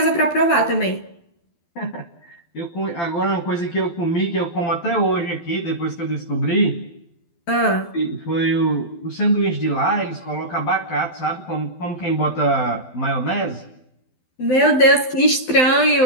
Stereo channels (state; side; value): late; right; 12 ms